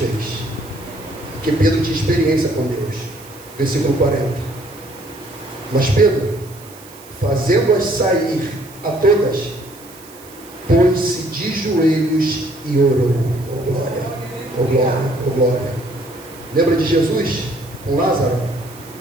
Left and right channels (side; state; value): right; noise; hiss, 21 dB below the sound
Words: Porque Pedro tinha experiência com Deus. Versículo 40. Mas Pedro, fazendo-as sair a todas, pôs-se de joelhos e orou. Oh glória, oh glória, oh glória. Lembra de Jesus com Lázaro?